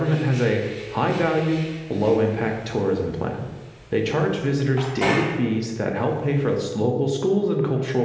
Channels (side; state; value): both; identical; correlation 1.00